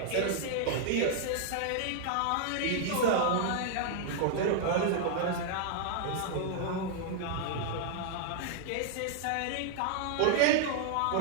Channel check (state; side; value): different; both; correlation -0.01